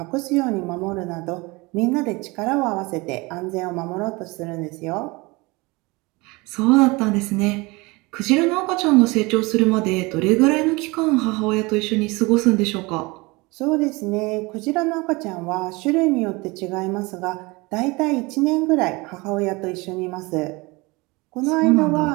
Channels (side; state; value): left; quieter; 24.5 dB